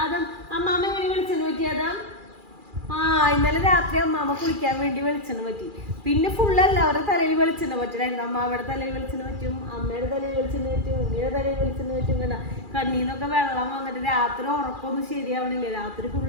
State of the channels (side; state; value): left; late; 2.4 ms